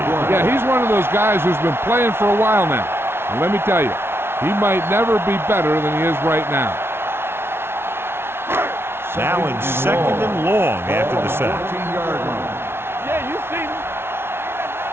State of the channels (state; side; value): late; left; 0.12 ms